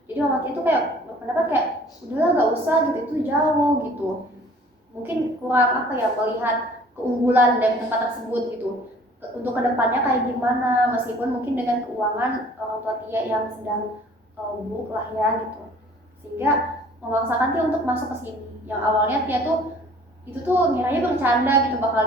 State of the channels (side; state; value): both; normal; correlation 0.52